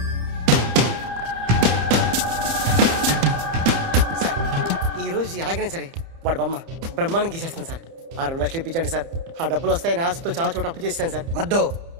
సార్, ఈరోజు ఎలాగైనా సరే వాడు బొమ్మ బ్రహ్మాండం గీసేస్తాను సార్. ఆ 2 లక్షలు ఇప్పించండి సార్. ఆ డబ్బులు వస్తాయని ఆశతో చాలా చోట అప్పు చేస్తాను సార్. వద్దు,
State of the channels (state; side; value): late; left; 30 ms